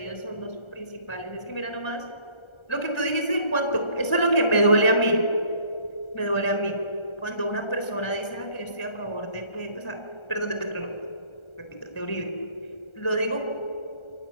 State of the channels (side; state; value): right; late; 1.3 ms